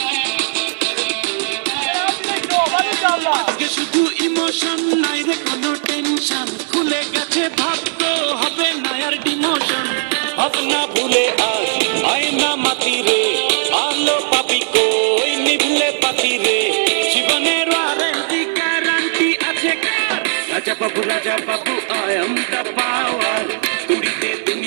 আজকে শুধু ইমোশন নাই রে কোনো টেনশন, খুলে গেছে ভাগ্য হবে না আর ডিমোশন। ভাবনা ভুলে আজ আয়না মাতি রে, আলো পাবি কই নিভলে পাতি রে, জীবনের ওয়ারেন্টি গ্যারান্টি আছে কার? Raja Babu I am the power, তুড়িতে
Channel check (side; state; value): left; silent; digital silence